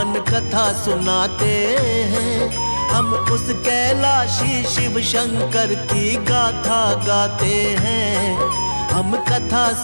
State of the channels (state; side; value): inverted; both; correlation -1.00